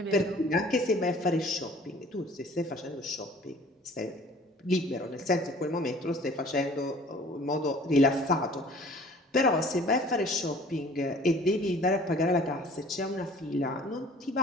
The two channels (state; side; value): normal; both; correlation 0.50